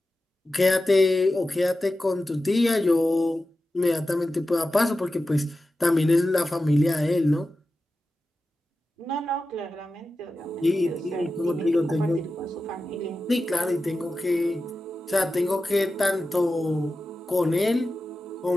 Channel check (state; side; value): normal; both; correlation 0.93